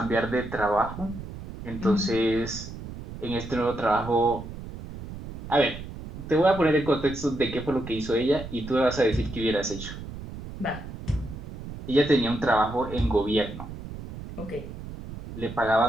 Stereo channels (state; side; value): noise; right; rumble, 11 dB below the sound